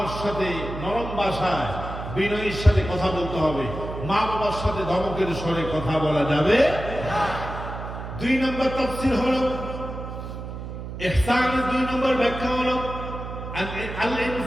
সাথে নরম ভাষায় বিনয়ের সাথে কথা বলতে হবে। মা বাবার সাথে ধমকের স্বরে কথা বলা যাবে না। 2 নম্বর তাফসীর হলো ইহসানের 2 নম্বর ব্যাখ্যা হলো আল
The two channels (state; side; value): noise; right; hum, 8 dB below the sound